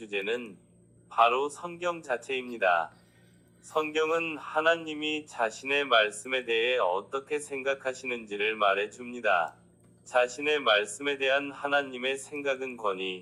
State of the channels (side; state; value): both; identical; correlation 1.00